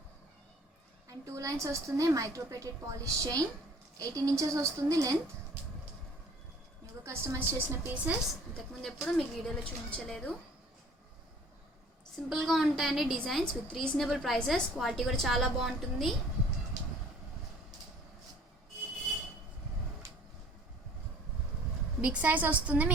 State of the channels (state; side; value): normal; both; correlation 0.52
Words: అండ్ 2 లైన్స్ వస్తుంది, మైక్రోప్లేటెడ్ పాలిష్ చైన్. 18 ఇంచెస్ వస్తుంది లెంత్. న్యూగా కస్టమైజ్ చేసిన పీసెస్. ఇంతకుముందు ఎప్పుడు మీకు వీడియోలో చూపించలేదు. సింపుల్గా ఉంటాయండి designs with reasonable prices. Quality కూడా చాలా బాగుంటుంది. బిగ్ సైజ్ వస్తుంది